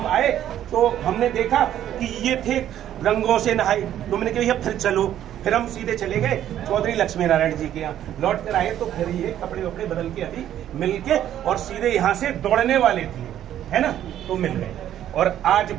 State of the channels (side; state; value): left; quieter; 11.3 dB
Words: आए तो हमने देखा कि ये थे रंगों से नहाए। तो मैंने कहा फिर चलो, फिर हम सीधे चले गए चौधरी लक्ष्मी नारायण जी के यहाँ। लौट कर आए तो फिर ये कपड़े वपड़े बदल के अभी मिल के और सीधे यहाँ से दौड़ने वाले थे, है ना, तो मिल गए और आज